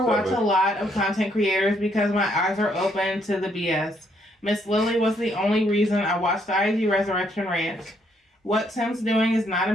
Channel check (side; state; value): both; normal; correlation 0.71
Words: watch a lot of content creators because my eyes are open to the BS. Miss Lily was the only reason I watched the IG Resurrection Ranch. What Tim's doing is not